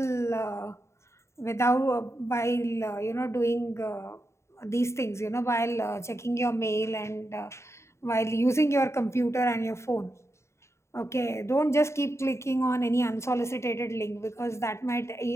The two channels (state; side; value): late; right; 0.13 ms